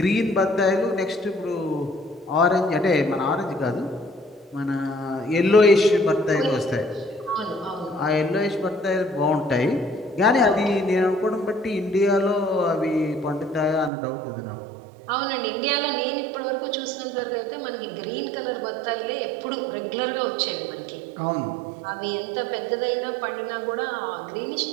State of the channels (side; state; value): left; drops out; at 13.9 s